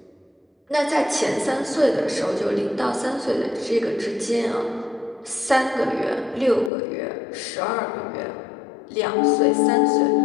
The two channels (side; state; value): right; drops out; at 6.7 s